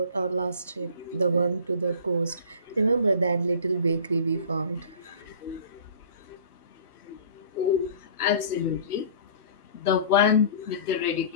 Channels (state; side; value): inverted; both; correlation -0.44